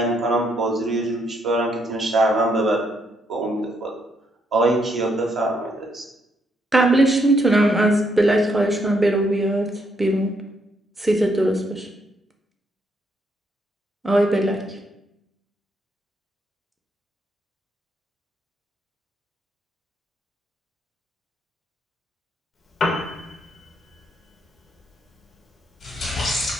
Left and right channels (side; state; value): both; normal; correlation 0.75